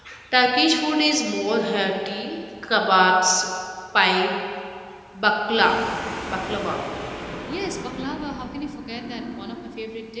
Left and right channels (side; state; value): both; identical; correlation 1.00